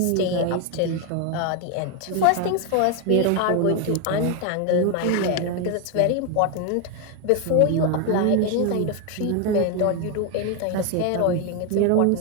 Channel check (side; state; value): both; different; correlation 0.01